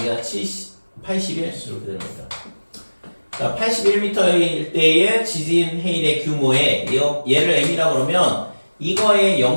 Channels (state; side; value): inverted; both; correlation -1.00